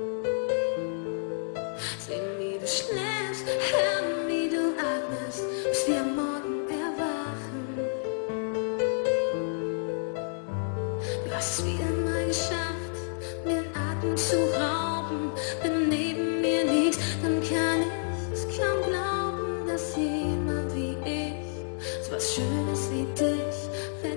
Sehen, wie du schläfst, hören, wie du atmest, bis wir am Morgen erwachen. Du hast es wieder mal geschafft, mir den Atem zu rauben. Wenn neben mir liegst, dann kann ich es kaum glauben, dass jemand wie ich so was Schönes wie dich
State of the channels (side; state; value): right; silent; digital silence